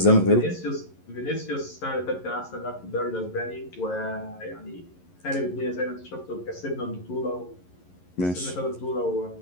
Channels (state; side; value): late; right; 11 ms